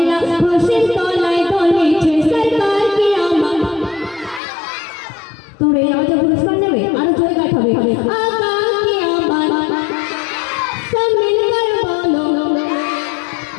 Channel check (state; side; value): drops out; right; at 4.4 s